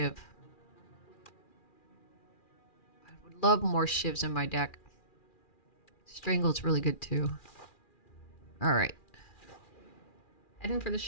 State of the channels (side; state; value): right; late; 2.4 ms